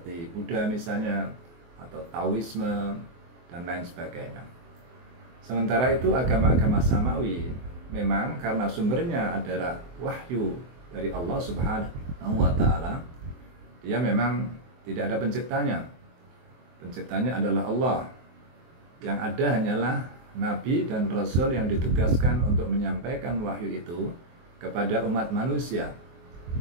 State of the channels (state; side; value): late; left; 24 ms